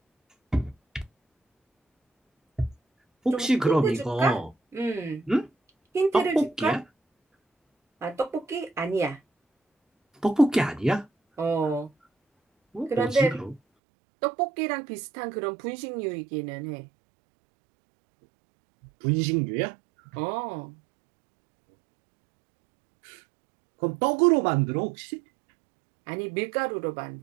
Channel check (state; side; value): drops out; left; at 13.6 s